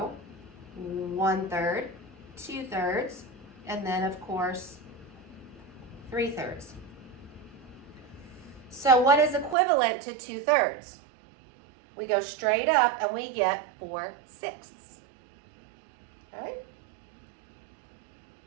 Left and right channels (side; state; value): left; drops out; at 9.6 s